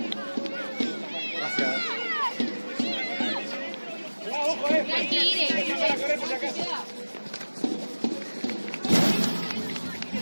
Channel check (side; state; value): both; inverted; correlation -1.00